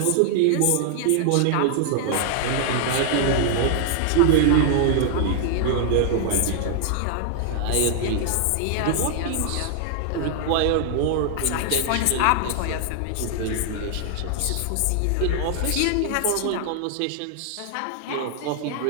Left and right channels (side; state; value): both; different; correlation 0.00